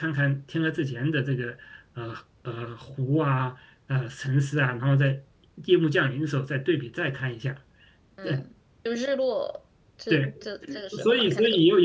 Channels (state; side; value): identical; both; correlation 1.00